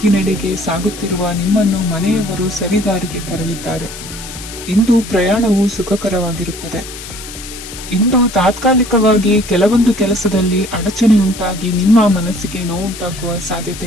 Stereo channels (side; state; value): left; noise; hiss, 12 dB below the sound